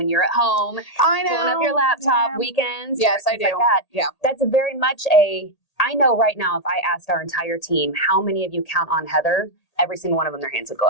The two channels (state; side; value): late; right; 1.8 ms